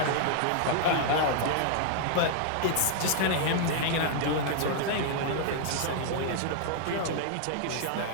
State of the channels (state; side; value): different; both; correlation -0.01